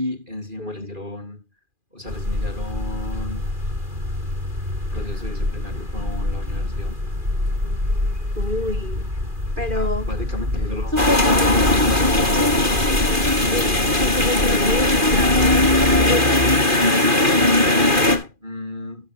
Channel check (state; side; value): late; left; 2.4 ms